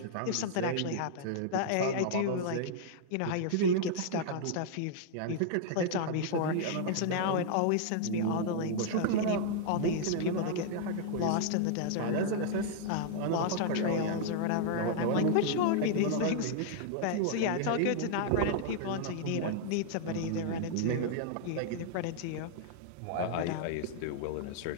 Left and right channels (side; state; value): both; different; correlation -0.01